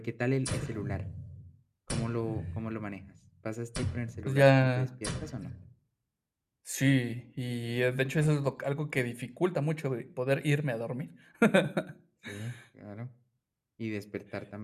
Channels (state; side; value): identical; both; correlation 1.00